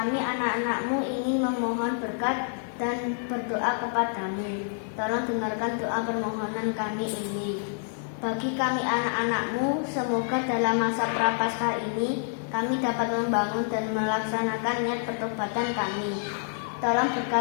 anak-anak-Mu ingin memohon berkat dan berdoa kepadamu. Tolong dengarkan doa permohonan kami ini. Bagi kami anak-anak-Mu, semoga dalam masa Prapaskah ini kami dapat membangun dan melaksanakan niat pertobatan kami. Tolong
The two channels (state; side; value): silent; right; digital silence